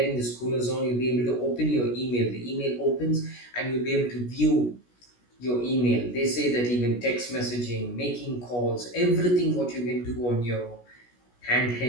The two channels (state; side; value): late; right; 16 ms